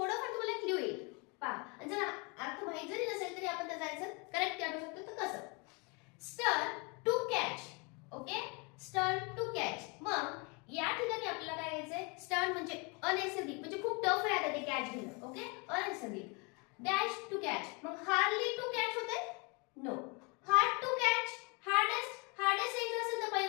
तुम्हाला clue येईल. पहा, जर अर्थ माहिती जरी नसेल तरी आपण त्याचा आन्सर करेक्ट काढू शकतो. तर कसं? स्टर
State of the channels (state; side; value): quieter; right; 31.1 dB